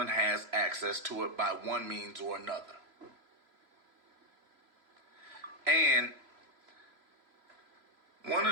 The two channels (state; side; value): late; left; 3.0 ms